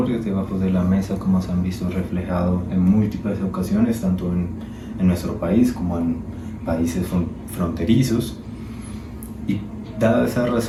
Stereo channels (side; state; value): both; identical; correlation 1.00